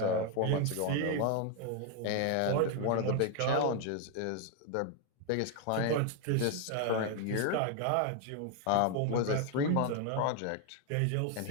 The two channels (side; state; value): both; different; correlation 0.00